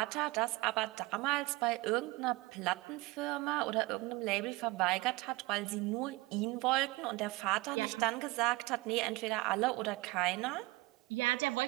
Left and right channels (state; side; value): quieter; left; 22.0 dB